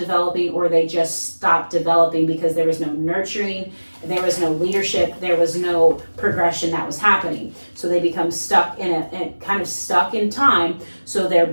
or they just stopped developing because there was no nurturing, there was no leadership, there was no progression that was happening. So they become stuck kind of stuck in time. So their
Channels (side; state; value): both; inverted; correlation -1.00